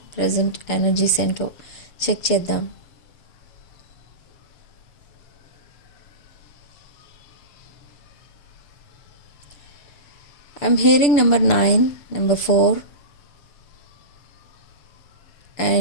ప్రజెంట్ ఎనర్జీస్ ఏంటో చెక్ చేద్దాం. I'm hearing number 9, number 4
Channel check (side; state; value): right; late; 6.8 ms